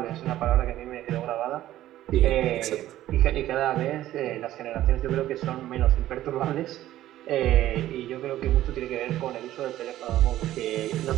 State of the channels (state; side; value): quieter; left; 13.8 dB